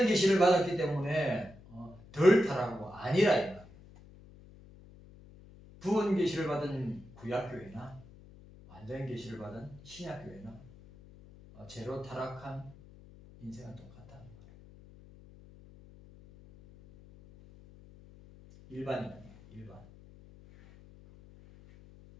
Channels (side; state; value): left; noise; hum, 21 dB below the sound